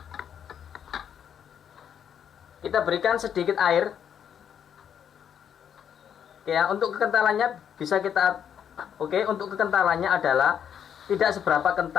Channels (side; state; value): right; quieter; 8.6 dB